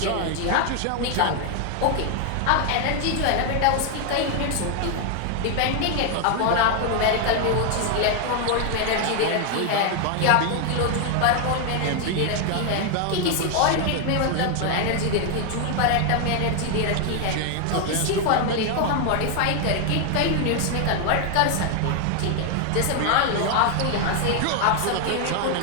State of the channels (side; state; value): both; different; correlation 0.00